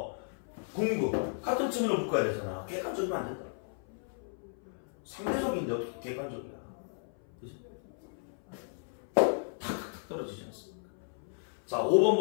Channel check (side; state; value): right; silent; 55 dB below the other